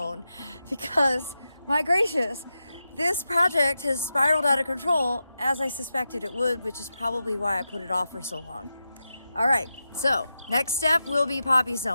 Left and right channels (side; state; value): both; inverted; correlation -0.90